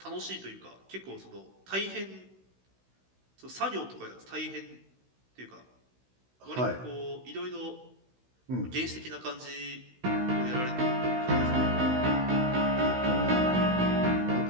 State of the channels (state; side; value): late; left; 16 ms